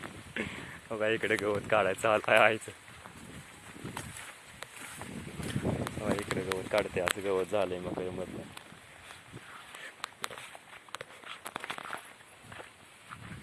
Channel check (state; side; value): identical; both; correlation 1.00